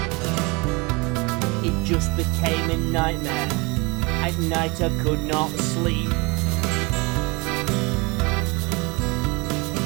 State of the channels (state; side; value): quieter; left; 27.1 dB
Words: It just became a nightmare. At night I could not sleep.